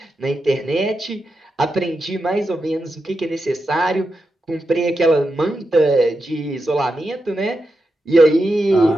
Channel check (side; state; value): both; normal; correlation 0.88